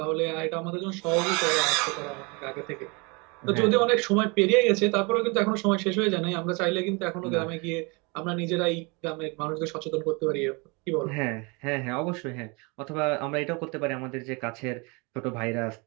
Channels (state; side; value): quieter; left; 29.3 dB